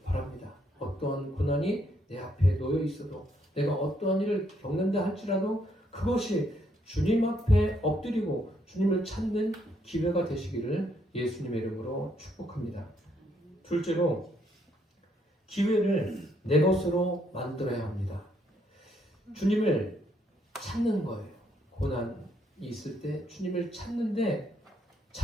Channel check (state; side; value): normal; both; correlation 0.72